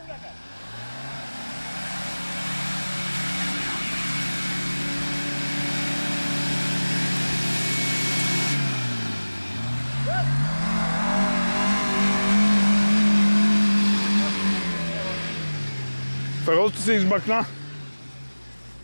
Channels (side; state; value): both; inverted; correlation -1.00